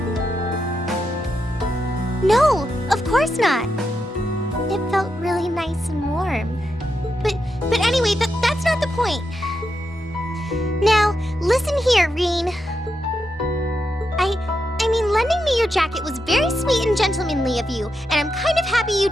No, of course not. It felt really nice and warm. But anyway, that's not the point. Now, listen here, Reen. I mean, lending me your jacket was very sweet and gentlemanly of you, and I'm kind of happy you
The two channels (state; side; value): normal; both; correlation 0.85